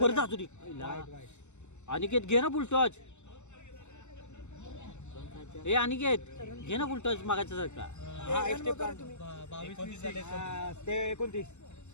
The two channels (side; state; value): right; late; 0.83 ms